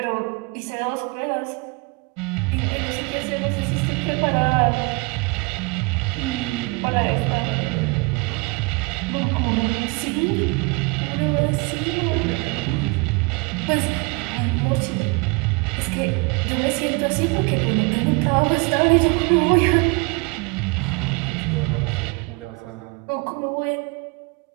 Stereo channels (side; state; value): left; quieter; 28.4 dB